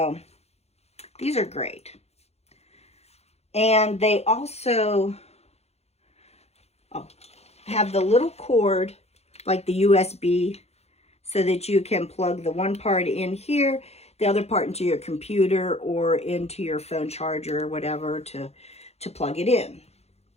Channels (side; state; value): right; late; 0.31 ms